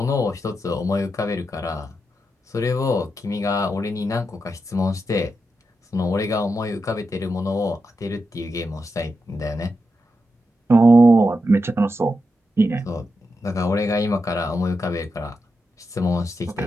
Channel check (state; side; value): normal; both; correlation 0.87